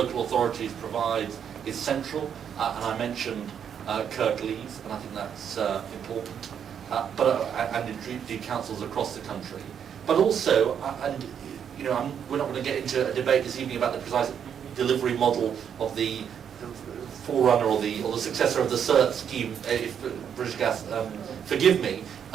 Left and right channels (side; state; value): left; quieter; 8.2 dB